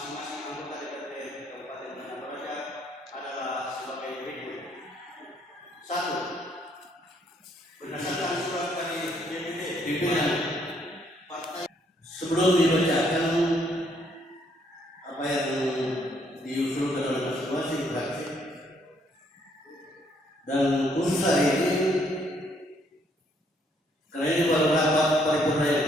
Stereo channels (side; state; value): both; normal; correlation 0.69